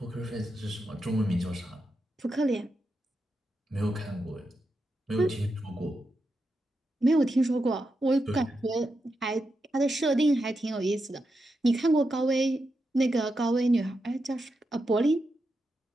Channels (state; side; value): normal; both; correlation 0.87